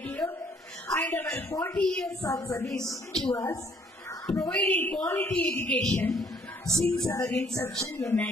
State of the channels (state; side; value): normal; both; correlation 0.62